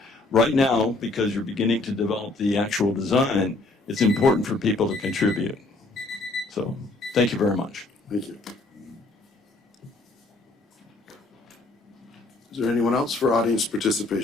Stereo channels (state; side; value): quieter; right; 3.1 dB